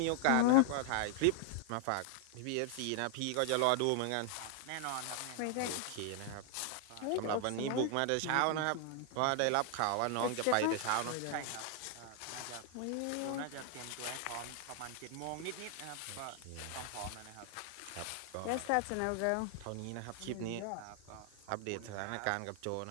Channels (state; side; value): different; both; correlation 0.00